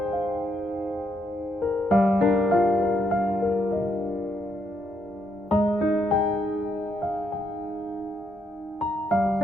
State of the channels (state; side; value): normal; both; correlation 0.76